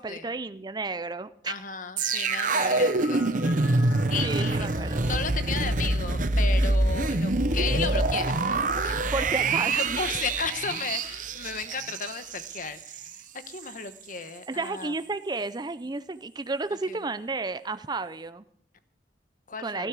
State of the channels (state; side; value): normal; both; correlation 0.47